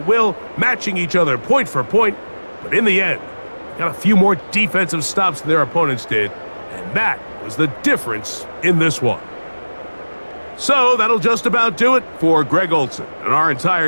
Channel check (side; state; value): both; inverted; correlation -1.00